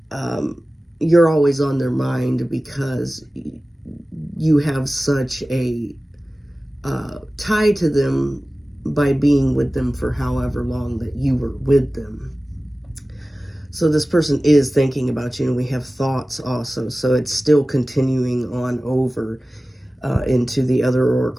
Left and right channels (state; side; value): normal; both; correlation 0.97